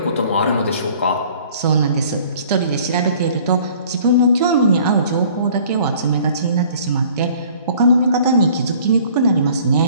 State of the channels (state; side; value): inverted; both; correlation -0.53